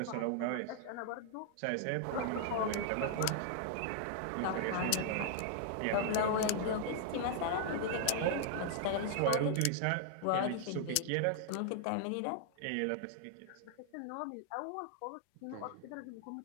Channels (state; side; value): different; both; correlation -0.01